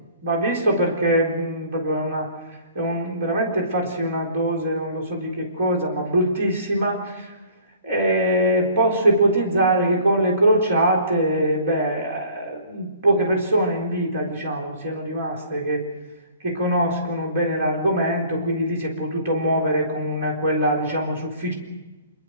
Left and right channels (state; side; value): inverted; both; correlation -0.52